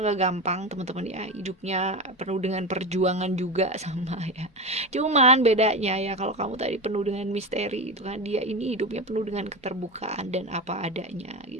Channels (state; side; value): normal; both; correlation 0.21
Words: gak gampang teman-teman ya, hidupnya penuh dengan perjuangan juga sama ya. Cuman bedanya ya, kalau kamu tadi penuh dengan misteri itu kan, dia ini hidupnya penuh dengan keterbukaan dan apa adanya